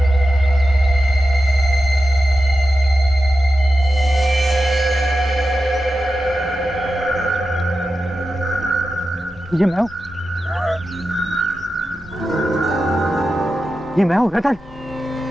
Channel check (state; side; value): normal; both; correlation 0.92